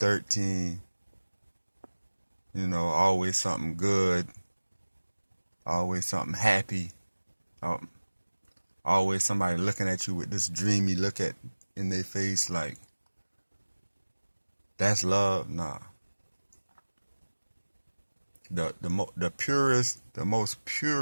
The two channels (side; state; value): both; inverted; correlation -1.00